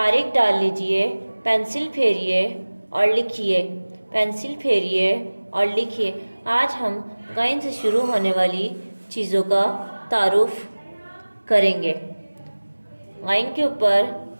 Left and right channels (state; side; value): inverted; both; correlation -1.00